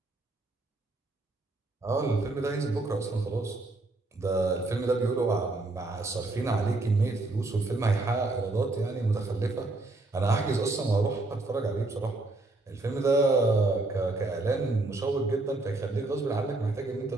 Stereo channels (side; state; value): left; quieter; 3.0 dB